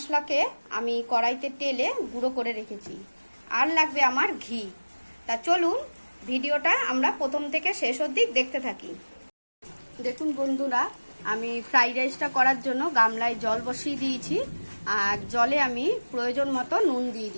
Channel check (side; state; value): both; inverted; correlation -1.00